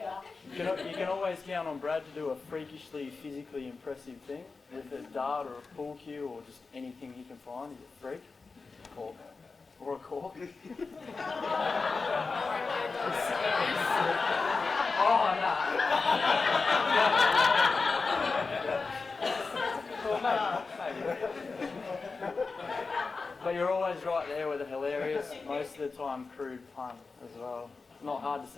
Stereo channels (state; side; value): quieter; right; 4.3 dB